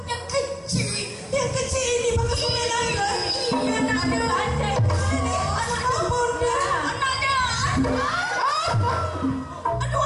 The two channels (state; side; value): identical; both; correlation 1.00